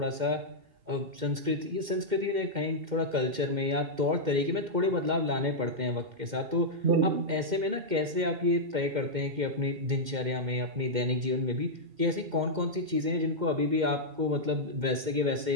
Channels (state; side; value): late; left; 2.1 ms